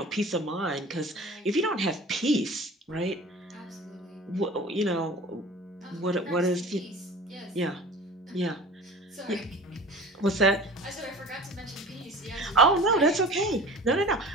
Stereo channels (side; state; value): both; normal; correlation 0.40